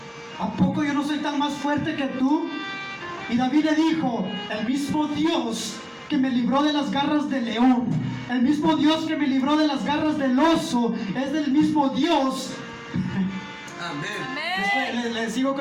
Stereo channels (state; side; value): identical; both; correlation 1.00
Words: ¿A poco yo no soy tan más fuerte que tú? Y David le dijo, el mismo Dios que me libró de las garras del león, el mismo Dios que me libró de las garras del oso, es del mismo Dios. Amén. Le sigo